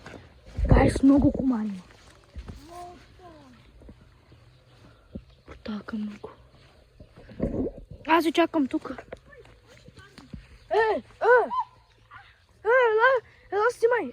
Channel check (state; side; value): identical; both; correlation 1.00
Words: Гайс, много комари. Така много. Аз ви чакам тук. Ела снимай.